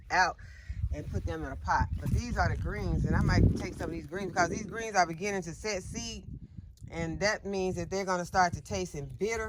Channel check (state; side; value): identical; both; correlation 1.00